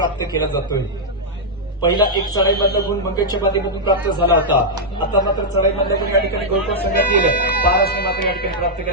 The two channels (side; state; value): both; normal; correlation -0.05